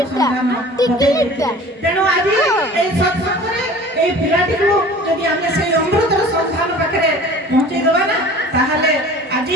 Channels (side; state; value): both; normal; correlation 0.43